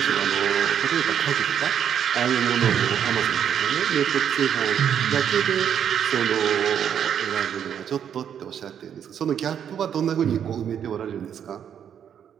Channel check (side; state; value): left; quieter; 8.7 dB